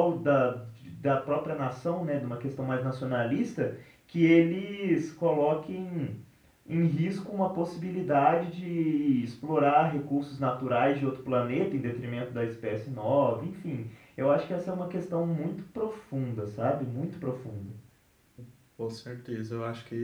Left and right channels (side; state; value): both; identical; correlation 1.00